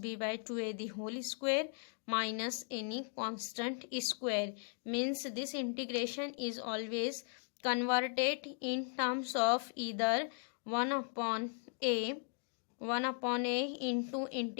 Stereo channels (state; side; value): silent; right; 53 dB below the other